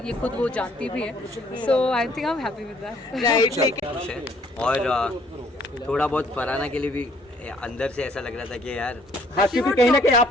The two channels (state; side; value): normal; both; correlation 0.62